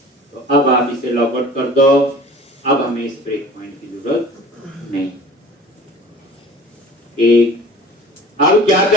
तो अब आप इसे लॉग आउट कर दो। अब हमें इस ब्रेक पॉइंट की जरूरत नहीं। एक अब क्या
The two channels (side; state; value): both; normal; correlation 0.43